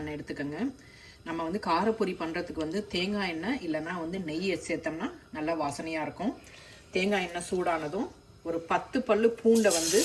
எண்ணெய் எடுத்துக்கோங்க. நம்ம காரப்பொரி பண்ணுறதுக்கு தேங்காய் எண்ணெய் இல்லைன்னா நெய் சேர்த்தோம்னா நல்லா வாசனையாக இருக்கும். தேங்காய் எண்ணெய் சூடானதும் ஒரு 10 பல்லு பூண்டை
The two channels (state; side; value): identical; both; correlation 1.00